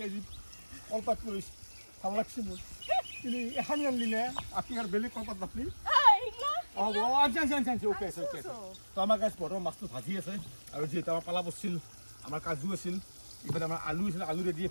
আজি কলপাত কৰিছে ভাল লাগছে মোৰ কিন্তু এখানি আনলি নে আপনি আৰ বেলেগ কলপাত নাপলি আনছি ওকে আছে তো আমাৰ গাছ বৰ্তমান মাছটো ভাজি আছে আৰু যিহেতু আমাৰ পালা বছিল আমাৰ কাজু আছিল ইফালে আমাৰ আলু আছিল আলু ৰেডি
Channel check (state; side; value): inverted; both; correlation -1.00